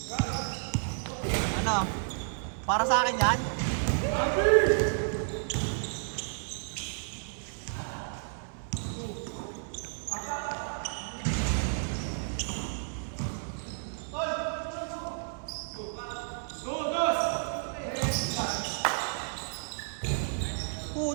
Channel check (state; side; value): silent; left; 57 dB below the other